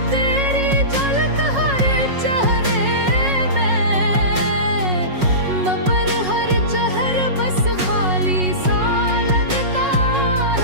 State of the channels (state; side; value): late; left; 5.5 ms